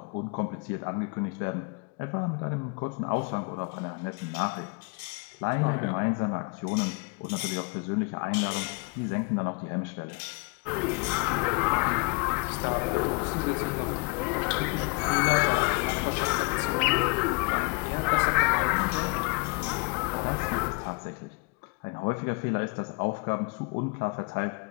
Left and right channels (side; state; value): right; quieter; 30.0 dB